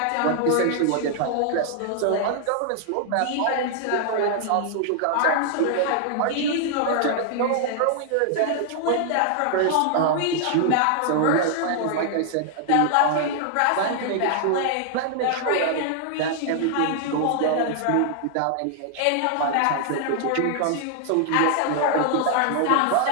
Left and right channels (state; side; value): different; both; correlation -0.01